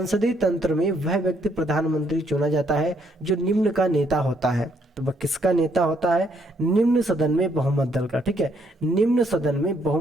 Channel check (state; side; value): normal; both; correlation 0.71